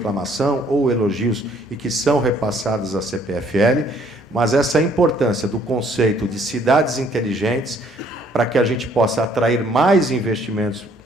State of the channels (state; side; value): normal; both; correlation 0.63